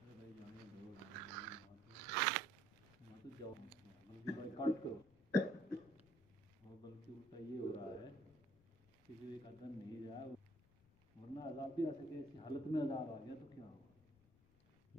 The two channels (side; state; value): left; noise; rumble, 27 dB below the sound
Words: بلکہ اس کا یہ ہو رہا ہے کہ جو ایک آدمی نہیں رہا ورنہ عذاب بھی آ سکے، ایسی حالت میں عذاب آ گیا تو کیا ہوگا.